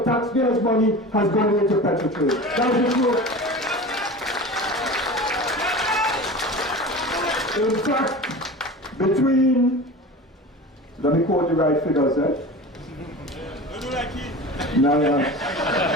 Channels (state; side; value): normal; both; correlation 0.33